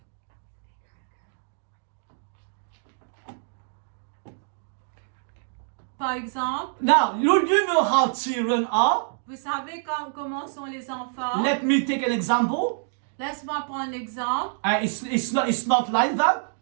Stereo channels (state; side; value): silent; left; digital silence